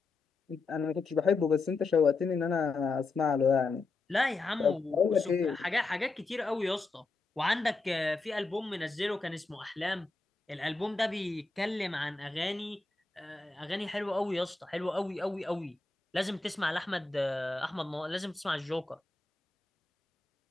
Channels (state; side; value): quieter; right; 3.8 dB